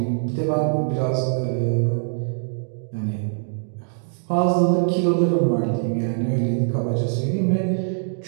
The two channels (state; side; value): silent; left; digital silence